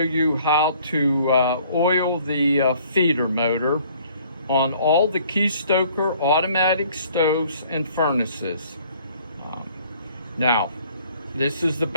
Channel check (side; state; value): both; inverted; correlation -0.57